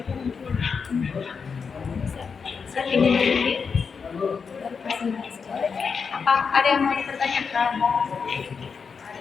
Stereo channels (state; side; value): quieter; right; 5.7 dB